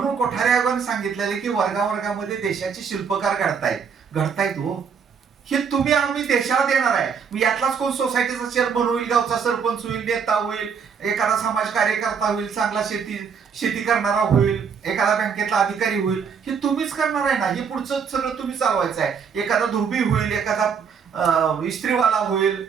कोठारे आयोगाने सांगितलेलं की वर्गावर्गामध्ये देशाचे शिल्पकार घडतायत हो. हे तुम्ही आम्ही देशाला देणार आहे. यातलाच कोण सोसायटीचा चेअरमन होईल, गावचा सरपंच होईल, नेता होईल, एखादा समाज कार्यकर्ता होईल, चांगला शेती करणारा होईल, एखादा बँकेतला अधिकारी होईल, हे तुम्हीच करणार आहे ना. हे पुढचं सगळं तुम्ही चालवायचं आहे. एखादा धुबी होईल, एखादा इस्त्रीवाला होईल,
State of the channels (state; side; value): quieter; left; 6.5 dB